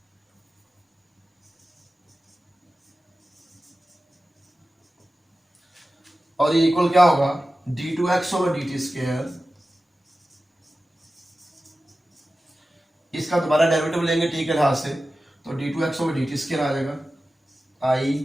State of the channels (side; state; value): both; normal; correlation 0.94